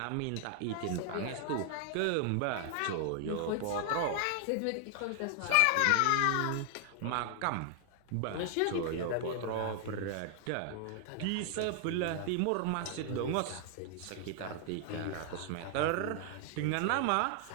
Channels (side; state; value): both; different; correlation 0.00